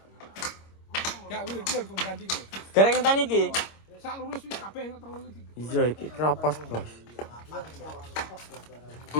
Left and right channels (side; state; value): right; late; 26 ms